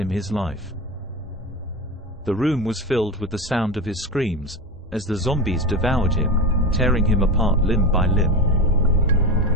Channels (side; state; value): both; normal; correlation 0.21